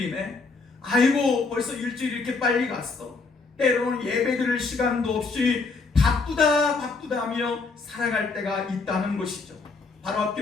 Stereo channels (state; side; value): quieter; right; 4.2 dB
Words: 아이고 벌써 일주일이 이렇게 빨리 갔어, 때로는 예배 드릴 시간도 없이 바쁘다 하며 살아갈 때가 있다는 것이죠. 바로